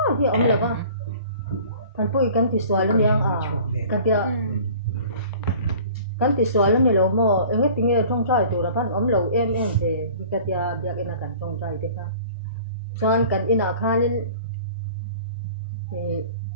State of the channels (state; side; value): inverted; both; correlation -0.47